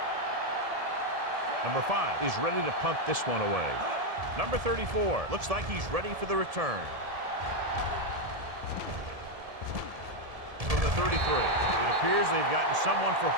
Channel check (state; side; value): late; left; 1.7 ms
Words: Number 5 is ready to punt this one away. Number 34 looks like he's ready for the return. From the 33, it appears they've gotten someone for